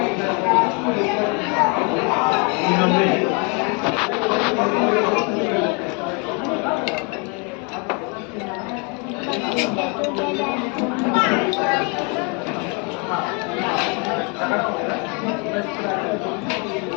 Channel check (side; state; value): right; quieter; 33.4 dB